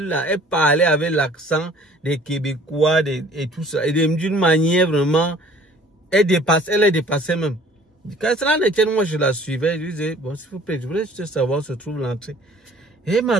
parlait avec l'accent des Québécois et tout ça, et d'une manière vraiment, elle est dépassée même. Quand cela ne tient, moi je la suivais, je lui disais, bon s'il vous plaît, je voulais juste savoir où se trouve l'entrée. Et elle m'a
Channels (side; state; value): both; normal; correlation 0.53